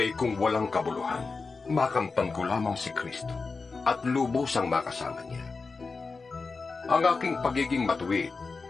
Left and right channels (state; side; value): quieter; right; 4.3 dB